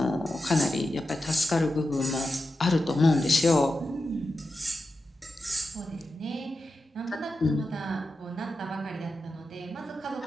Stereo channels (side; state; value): both; normal; correlation 0.90